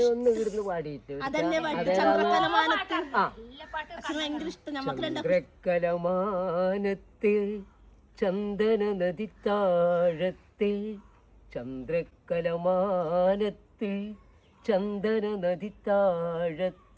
ഇവിടുന്ന് പാടിയിട്ട് അതന്നെ പാട്ട് ചന്ദ്രക്കലമാനത്ത്. അച്ഛന് ഭയങ്കര ഇഷ്ടം. നമുക്ക് ചന്ദ്രക്കലമാനത്തെ ചന്ദന നദി താഴത്തെ ചന്ദ്രക്കലമാനത്തെ ചന്ദന നദി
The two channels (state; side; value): identical; both; correlation 1.00